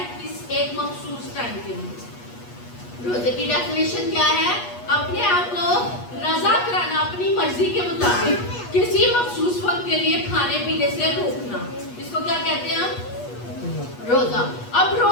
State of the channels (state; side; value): late; right; 8.3 ms